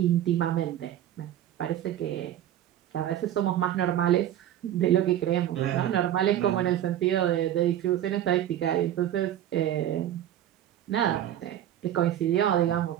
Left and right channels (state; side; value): quieter; left; 11.6 dB